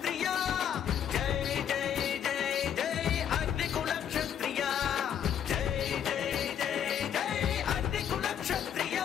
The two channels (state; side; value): quieter; right; 9.1 dB